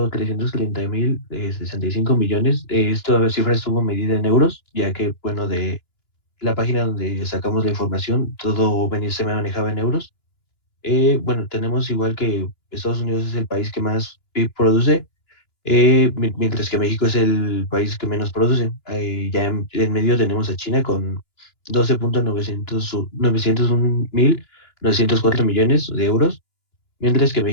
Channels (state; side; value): late; right; 2.9 ms